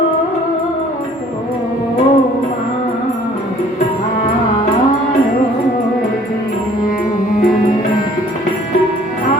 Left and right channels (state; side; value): normal; both; correlation 0.55